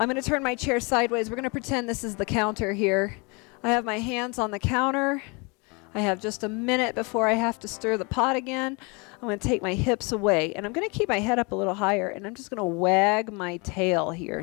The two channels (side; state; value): right; quieter; 30.0 dB